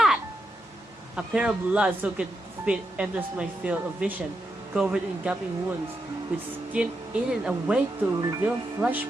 A pair of blood-soaked feet enters my field of vision, covered in gaping wounds, with skin eaten away to reveal flesh,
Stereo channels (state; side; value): normal; both; correlation 0.85